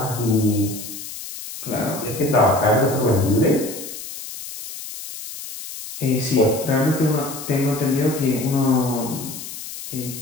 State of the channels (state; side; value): noise; left; hiss, 11 dB below the sound